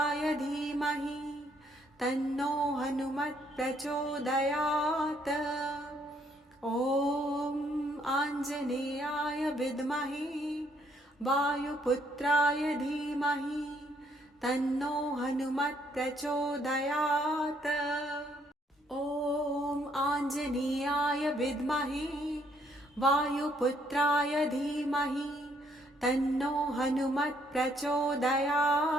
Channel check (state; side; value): normal; both; correlation 0.69